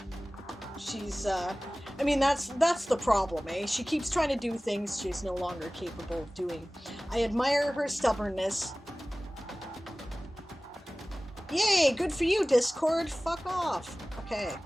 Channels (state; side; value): normal; both; correlation 0.98